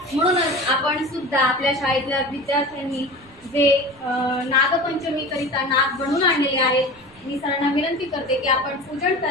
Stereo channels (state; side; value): noise; right; rumble, 27 dB below the sound